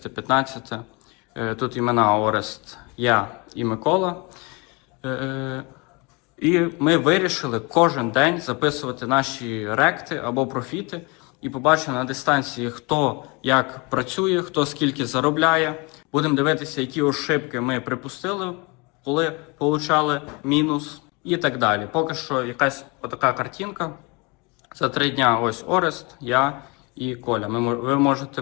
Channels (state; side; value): quieter; right; 28.6 dB